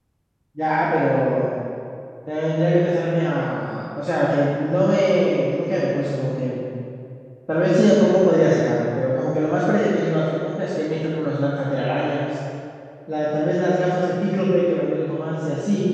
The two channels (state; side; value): identical; both; correlation 1.00